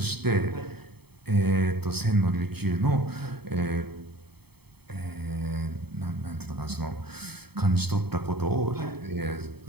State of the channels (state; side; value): late; left; 0.97 ms